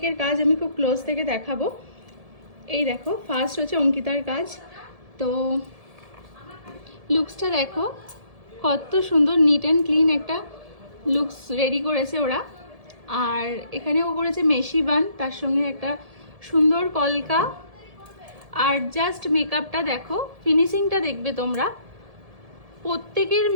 কাজ আমি খুব ক্লোজ থেকে দেখাবো। এই দেখো, ফার্স্ট হচ্ছে অঙ্কিতার কাজ। তো লুকসটা দেখো, কত সুন্দর নিট অ্যান্ড ক্লিন একটা লুকস রেডি করেছে ওরা। আর এখানেও করেছে মেশি বান, তার সঙ্গে একটা সুন্দর কলকা। আর জাস্ট মেকআপটা দেখো, ফিনিশিংটা দেখবে তোমরা। প্রত্যেকের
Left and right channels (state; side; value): late; left; 1.7 ms